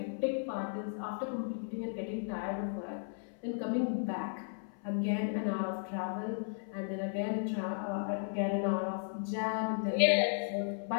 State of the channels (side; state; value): right; silent; 54 dB below the other